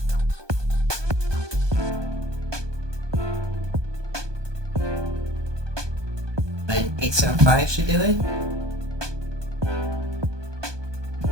an 875 should do it.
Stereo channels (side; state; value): left; late; 1.2 ms